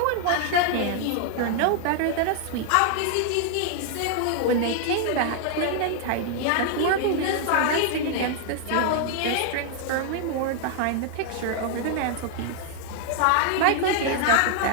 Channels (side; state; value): both; different; correlation 0.00